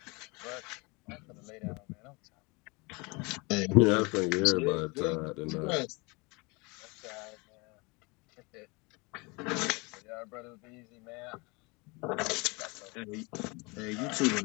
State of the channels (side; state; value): right; quieter; 27.9 dB